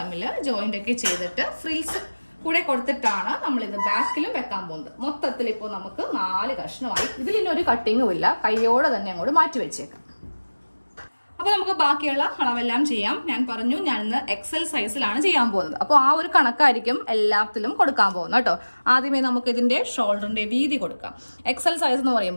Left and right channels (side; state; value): both; inverted; correlation -1.00